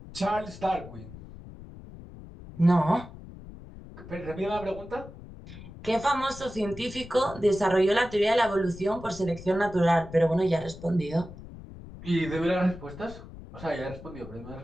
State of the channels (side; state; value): left; noise; rumble, 15 dB below the sound